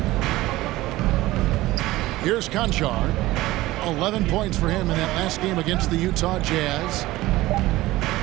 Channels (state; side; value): quieter; left; 17.7 dB